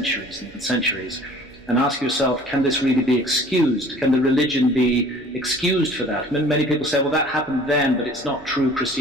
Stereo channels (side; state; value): right; noise; hum, 27 dB below the sound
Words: and centuries, and ask yourself, can this really be excused? Can the religion be excused for that? Many people say, well, that happened then, but it's not true